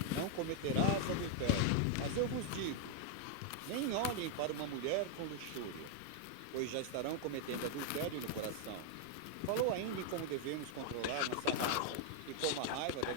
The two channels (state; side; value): different; both; correlation 0.00